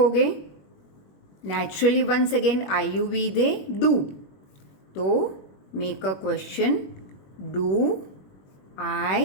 Naturally once again I, you, we, they, do. तो make a question, do I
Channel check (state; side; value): late; right; 21 ms